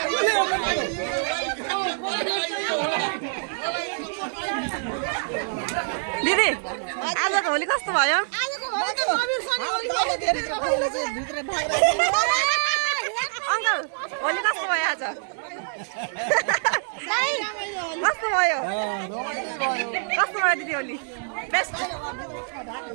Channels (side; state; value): left; silent; digital silence